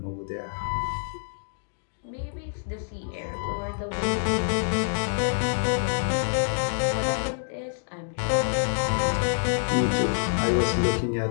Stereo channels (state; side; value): silent; right; digital silence